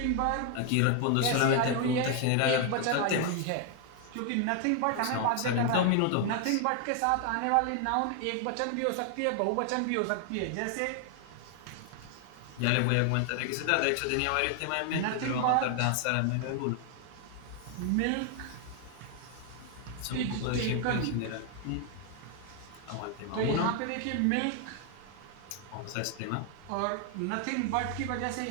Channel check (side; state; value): both; different; correlation 0.00